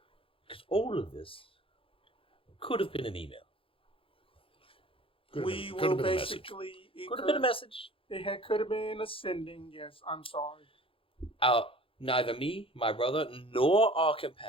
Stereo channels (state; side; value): late; right; 0.26 ms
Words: Because all of this could have been an email. We will basically... Could have been a message. It could have been a sending, yes. I'm sorry. Neither me, my brother, nor our